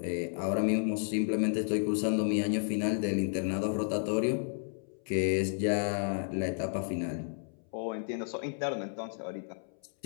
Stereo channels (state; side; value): silent; right; 56 dB below the other